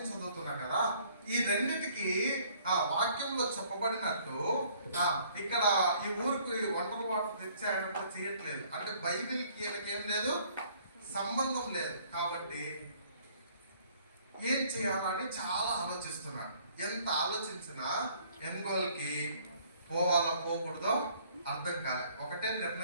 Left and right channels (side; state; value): both; inverted; correlation -0.59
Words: చదువుతున్నా కదా, ఈ రెండింటికి వాక్యంలో చెప్పబడినట్టు ఇక్కడ ఈ ఊరికి ఒంటరి వాటర్ తెచ్చాయన్నప్పుడు చేయట్లేదు, అంటే బైబిల్కి ఈయనకేం లేదు, సంబంధం లేదు. కాబట్టి ఏం చేయాలని చాలా ఆలోచిస్తున్నాడు. ఎంత ఆలోచించినా ఎన్గోల్కి పోవాలో పోకూడదో అర్థం కాలేదు. ఒకటే